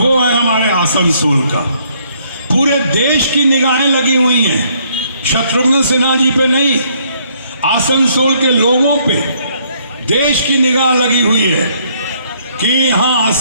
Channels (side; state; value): both; inverted; correlation -0.67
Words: है हमारे आसनसोल का। पूरे देश की निगाहें लगी हुई हैं शत्रुघ्न सिन्हा जी पे नहीं, आसनसोल के लोगों पे देश की निगाह लगी हुई है कि यहाँ